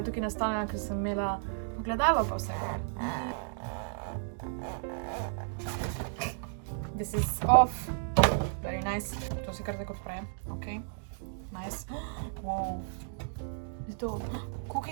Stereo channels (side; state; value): left; silent; digital silence